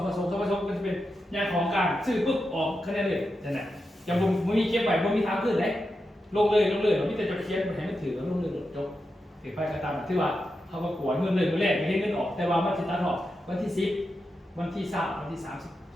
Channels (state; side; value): normal; both; correlation 0.88